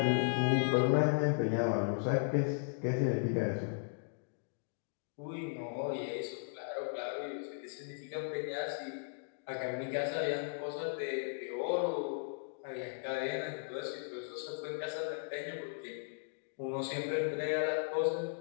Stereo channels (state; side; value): silent; right; digital silence